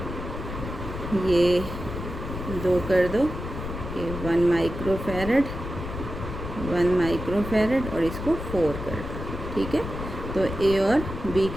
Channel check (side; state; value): left; noise; rumble, 7 dB below the sound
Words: ये 2 कर दो, ये 1 माइक्रोफैरड, 1 माइक्रोफैरड, और इसको 4 कर दो। ठीक है, तो ए और बी